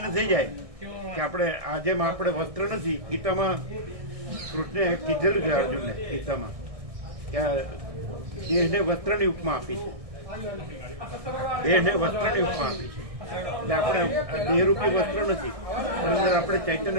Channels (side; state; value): left; late; 1.6 ms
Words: થઈ જાય કે આપણે જેમ આપણે વસ્ત્ર નથી. ગીતામાં કૃષ્ણે કીધેલું છે અર્જુનને, ગીતામાં કે દેહને વસ્ત્રની ઉપમા આપી છે. દેહને વસ્ત્રની ઉપમા આપી છે. એટલે આપણે દેહરૂપી વસ્ત્ર નથી, પણ અંદર આપણે